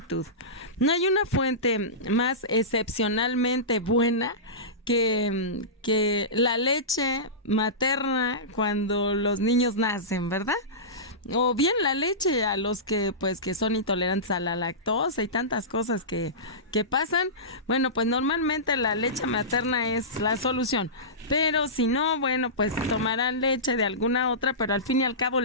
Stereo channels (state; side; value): normal; both; correlation -0.19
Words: No hay una fuente más excepcionalmente buena que la leche materna cuando los niños nacen, ¿verdad? O bien la leche a los que son intolerantes a la lactosa y tantas cosas que pasan. Bueno, pues normalmente la leche materna es la solución, pero si no, bueno, pues tomarán leche de alguna otra, pero al fin y al cabo